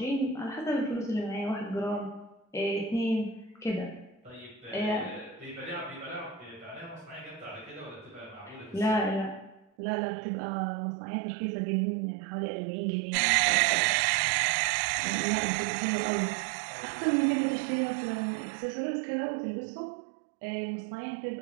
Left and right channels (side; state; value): left; drops out; at 9.7 s